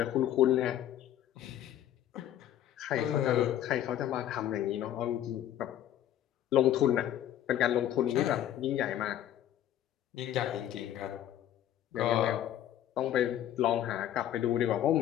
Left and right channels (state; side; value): quieter; right; 11.6 dB